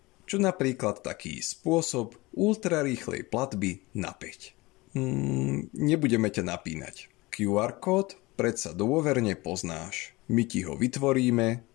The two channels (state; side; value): quieter; right; 22.1 dB